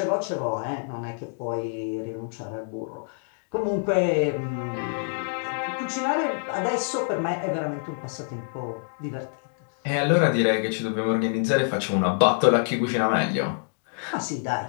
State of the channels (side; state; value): right; silent; digital silence